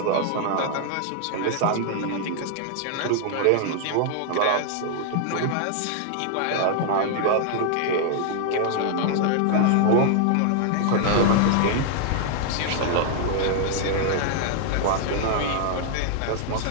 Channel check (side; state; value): both; different; correlation 0.00